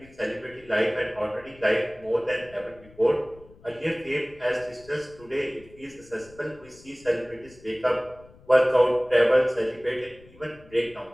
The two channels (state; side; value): noise; left; rumble, 24 dB below the sound